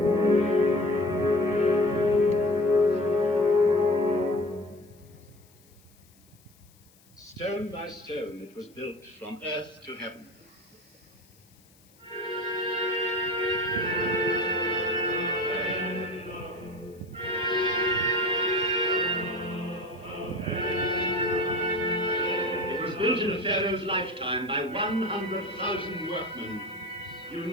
Stone by stone, it was built from earth to heaven. It was built in a pharaoh's lifetime by 100,000 workmen,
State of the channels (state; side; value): noise; left; hiss, 30 dB below the sound